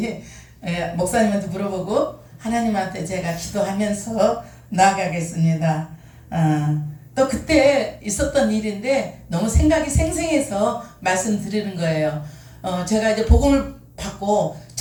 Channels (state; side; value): identical; both; correlation 1.00